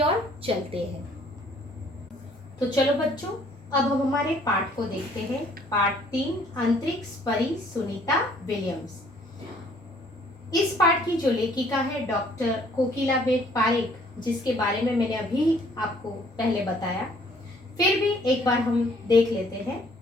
ओर चलते हैं। तो चलो बच्चों, अब हम हमारे पाठ को देखते हैं। पाठ 3, अंतरिक्ष परी सुनीता विलियम्स। इस पाठ की जो लेखिका है डॉक्टर कोकिलाबेन पारेख, जिसके बारे में मैंने अभी आपको पहले बताया, फिर भी एक बार हम देख लेते हैं।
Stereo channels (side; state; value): both; normal; correlation 0.60